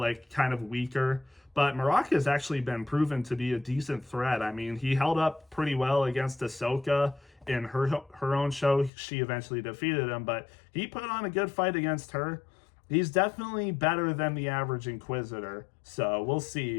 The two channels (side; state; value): right; drops out; at 8.9 s